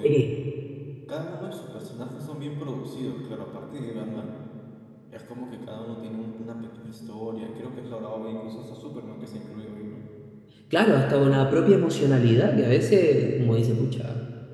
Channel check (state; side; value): identical; both; correlation 1.00